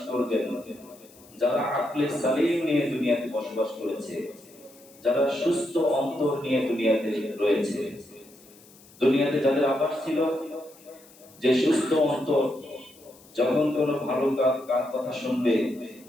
করবেন যারা আকলে সালিম নিয়ে দুনিয়াতে বসবাস করেছে, যারা সুস্থ অন্তর নিয়ে দুনিয়াতে রয়েছে। দুনিয়াতে যাদের আবাস ছিল যে সুস্থ অন্তর, যখন কোনো ভালো কাজ কথা শুনবে,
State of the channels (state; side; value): noise; left; hiss, 25 dB below the sound